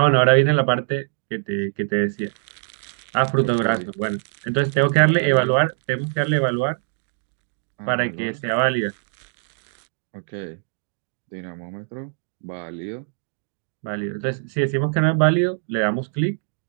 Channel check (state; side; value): silent; left; digital silence